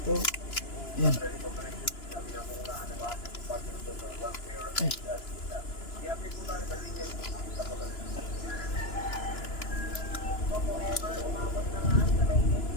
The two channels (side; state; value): right; late; 2.9 ms